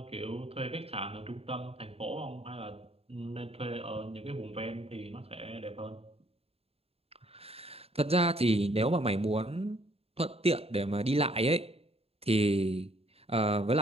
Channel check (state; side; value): late; left; 0.29 ms